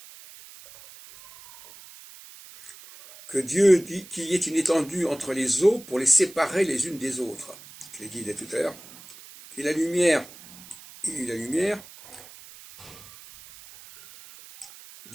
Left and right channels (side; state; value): right; noise; hiss, 19 dB below the sound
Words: Que Dieu dit qu'il y ait une étendue entre les eaux pour les séparer les unes des autres. Je l'ai dit tout à l'heure. Qu'il y ait la lumière,